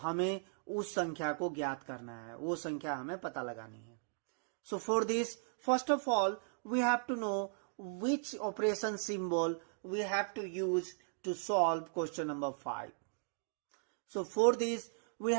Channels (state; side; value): silent; left; digital silence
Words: उस संख्या को ज्ञात करना है, वो संख्या हमें पता लगानी है। So for this, first of all, we have to know which operation symbol we have to use to solve question number 5. So for this, we